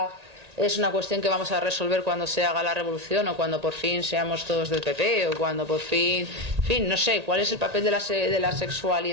es una cuestión que vamos a resolver cuando se haga la revolución o cuando por fin seamos todos del PP o cuando por fin, en fin, no sé, cuál es el papel de la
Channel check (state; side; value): late; left; 1.8 ms